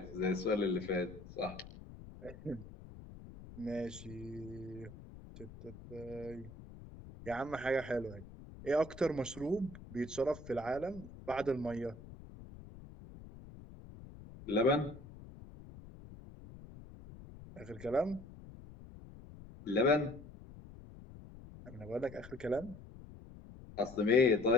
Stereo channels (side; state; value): left; noise; rumble, 16 dB below the sound